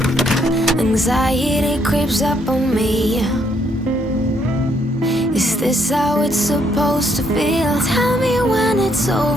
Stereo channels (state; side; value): normal; both; correlation 0.71